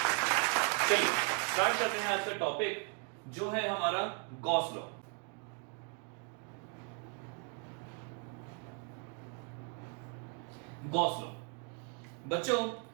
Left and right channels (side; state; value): left; quieter; 38.0 dB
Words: चलिए स्टार्ट करते हैं आज का टॉपिक, जो है हमारा गॉस लॉ। गॉस लॉ बच्चों,